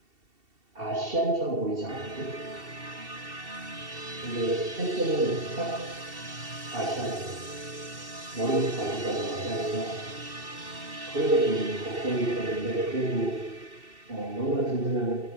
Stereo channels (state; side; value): late; left; 2.7 ms